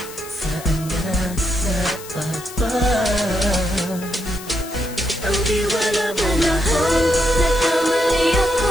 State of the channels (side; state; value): left; noise; hiss, 15 dB below the sound